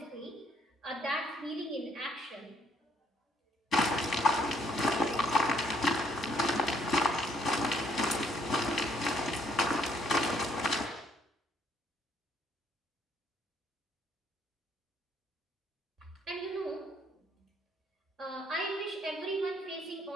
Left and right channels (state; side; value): normal; both; correlation 0.66